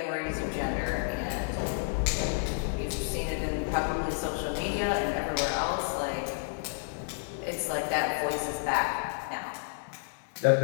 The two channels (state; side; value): silent; right; 57 dB below the other